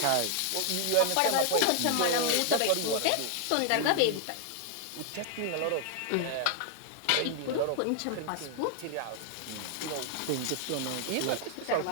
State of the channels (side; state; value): both; different; correlation 0.00